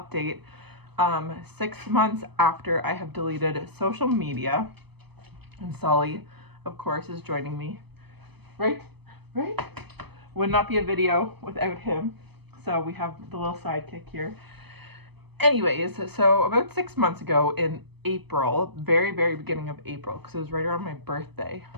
6 months after I have deleted social media, and Sully of course is joining me. Right? Would not be a video without him. So we have the little sidekick here. Anyways, so about 6 months ago in April, very beginning of April, because it was right around my birthday,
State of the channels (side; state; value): left; late; 0.98 ms